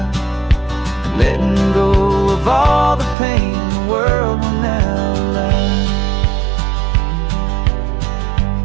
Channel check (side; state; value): left; drops out; at 3.2 s